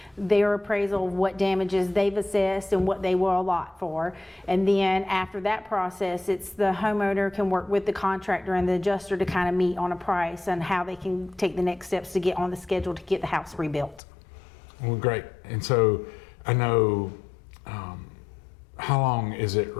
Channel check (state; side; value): drops out; right; at 14.0 s